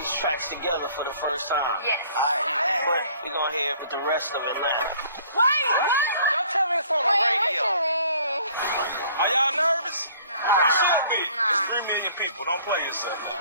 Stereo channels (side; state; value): both; inverted; correlation -0.55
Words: tracks together for the first time. Yes. Alright, but we gonna hear it with the rest of Atlanta. Wait! Don't tell me it's on the radio. Are y'all nervous? You should be. It's 3 million people. Don't play yourself.